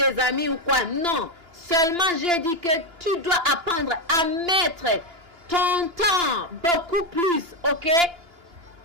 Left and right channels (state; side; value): late; left; 2.9 ms